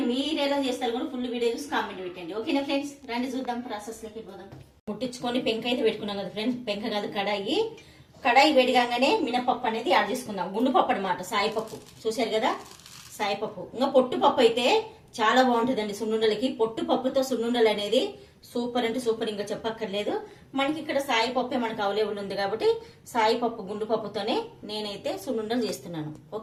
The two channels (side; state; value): both; identical; correlation 1.00